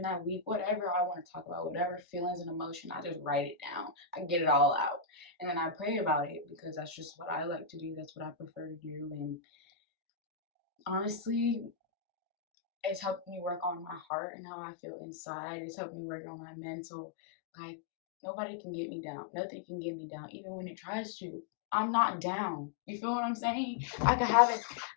that week, whatever I want to talk about, whatever feelings and emotion, I just write it down. I get it all out. And then I pray about it because that's just what I like to do. That's what I prefer to do. And honestly, it's helped me work on my heart and how I feel inside. It's helped me work on my mental. Like, nobody can get me down. Nothing can get me down, even when it tries to. I'm not down. You feel what I'm saying? I could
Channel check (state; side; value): drops out; right; at 14.0 s